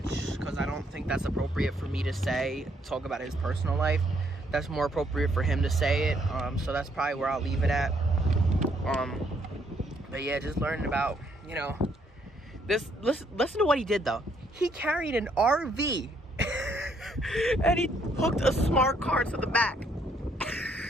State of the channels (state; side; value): normal; both; correlation 0.70